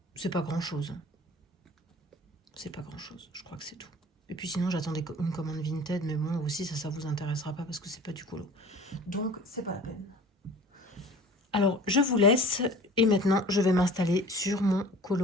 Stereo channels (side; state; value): both; normal; correlation 0.44